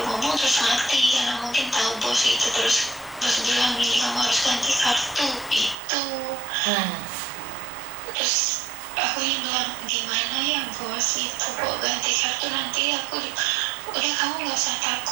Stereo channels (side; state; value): left; drops out; at 5.8 s